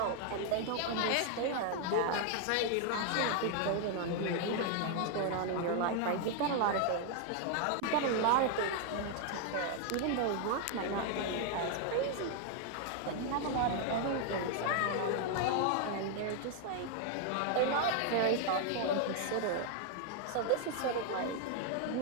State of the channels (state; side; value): different; both; correlation 0.00